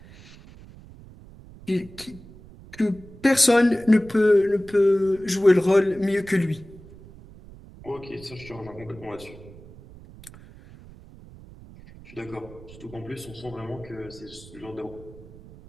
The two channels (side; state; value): right; noise; rumble, 20 dB below the sound